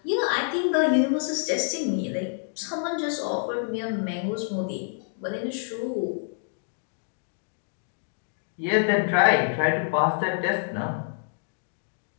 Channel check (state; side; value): silent; right; digital silence